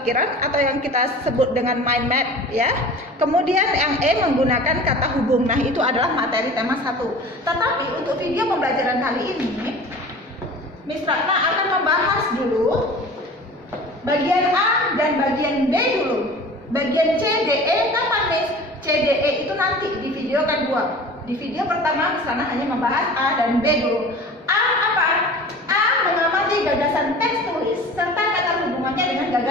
atau yang kita sebut dengan mind map ya. Kemudian yang E menggunakan kata hubung. Nah, itu adalah materi tema 1. Tetapi untuk video pembelajaran kali ini Miss Ratna akan membahas dulu bagian A dan bagian B dulu. Bagian C, D, E kapan Miss? C, D, E itu nanti di video kedua. Di video pertama Miss Ratna hanya membahas A dan B dulu. A apa? A mengamati gagasan teks tulis serta kata hubungannya dengan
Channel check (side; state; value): both; normal; correlation 0.40